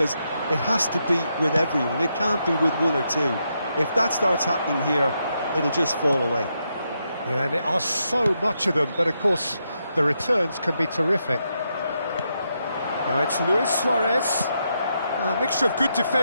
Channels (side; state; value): both; inverted; correlation -0.82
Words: it has to be with everyone. It can't be with one or two. If that starts happening here, it'll just fall away. Yeah, and there are so much of them, but of course the returns can be terrific. Now it's Luis Suarez. A mixture of good